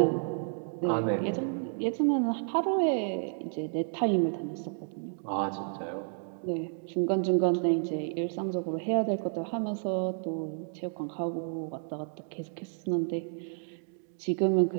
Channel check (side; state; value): left; silent; 57 dB below the other